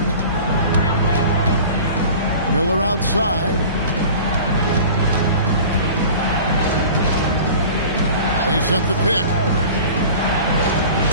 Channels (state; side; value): inverted; both; correlation -0.41